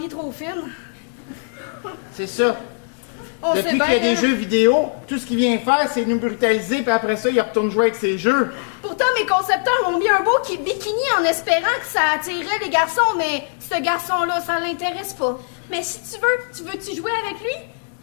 trop fine. C'est ça. On sait Depuis qu'il y a bien, des hein. jeux vidéo, tout ce qu'il vient faire, c'est nous brutaliser, puis après ça, il retourne jouer avec ses jeux. Pourtant, mes concepteurs ont mis un beau bikini en espérant que ça attirerait les garçons, mais ce garçon-là, ça l'intéresse pas. Mais si tu veux-tu jouer avec lui?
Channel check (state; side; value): silent; right; 65 dB below the other